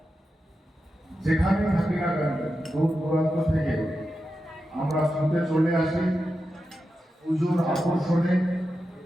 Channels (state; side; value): normal; both; correlation 0.90